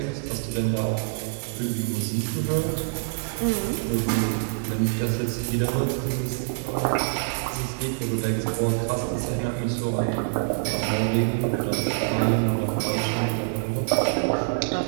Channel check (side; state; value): left; silent; digital silence